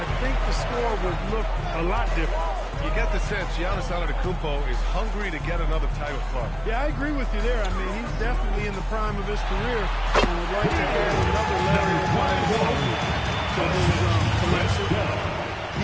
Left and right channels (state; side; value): identical; both; correlation 1.00